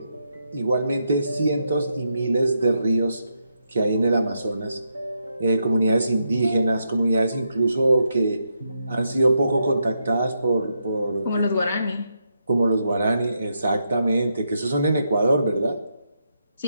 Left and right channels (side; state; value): both; inverted; correlation -0.82